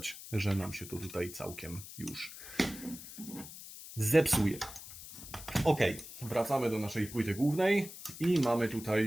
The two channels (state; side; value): noise; left; hiss, 13 dB below the sound